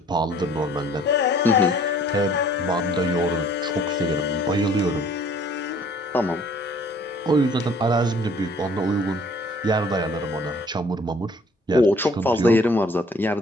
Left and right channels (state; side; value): normal; both; correlation 0.56